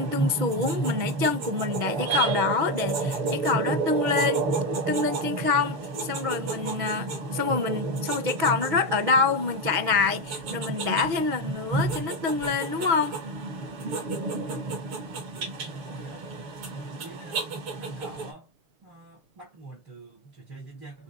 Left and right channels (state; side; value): late; left; 6.8 ms